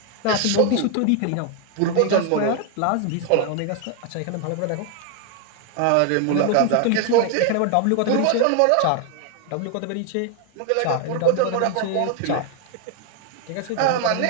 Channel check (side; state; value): both; different; correlation 0.01